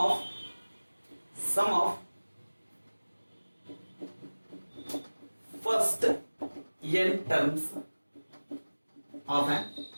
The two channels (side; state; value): both; inverted; correlation -1.00